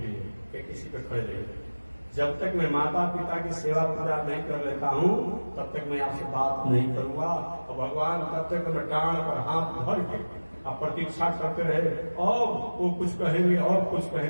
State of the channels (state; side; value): inverted; both; correlation -1.00